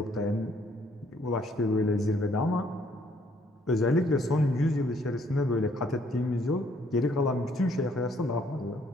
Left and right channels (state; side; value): normal; both; correlation 0.66